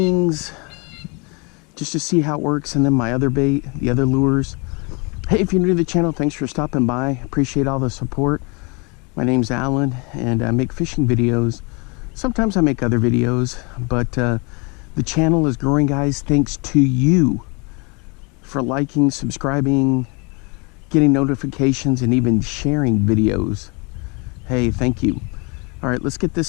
just to see how it works, and then my other bait, the other lures. Hey, if you're new to the channel, thanks for stopping by. Appreciate all the support. My name's Alan, and I make fishing videos. Sometimes I make other videos, but the channel is growing, guys, thanks to you for liking, subscribing, getting notifications, and even sharing videos. Hey, thank you. All right, let's get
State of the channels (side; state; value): right; quieter; 30.8 dB